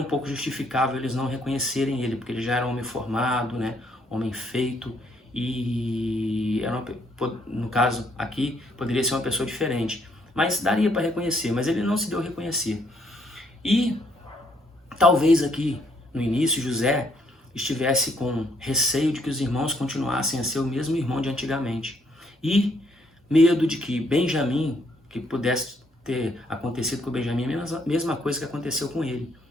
pouco justificável eles não reconhecerem ele, porque ele já era homem formado, né? Homem feito. E era no caso aqui, poderia ser uma pessoa diferente. Mas daria para reconhecer, mas ele não se deu a reconhecer. E talvez aqui, no início, José estivesse com receio de que os irmãos continuassem a ser o mesmo irmão de antigamente. E medo de que Benjamim, que pudesse ter acontecido com Benjamim, a mesma coisa que aconteceu com ele,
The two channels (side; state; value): both; normal; correlation 0.70